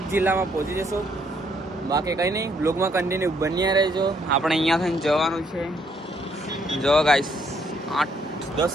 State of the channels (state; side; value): normal; both; correlation 0.70